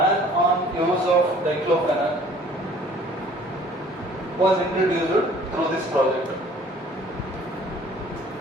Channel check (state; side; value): normal; both; correlation 0.53